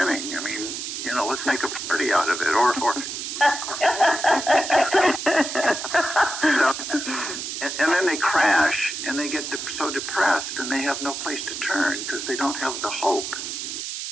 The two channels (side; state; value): right; noise; hiss, 6 dB below the sound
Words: I mean, let's make a party out of it. Or and then they crash and they get so depressed and they have no place to turn because they don't have the hope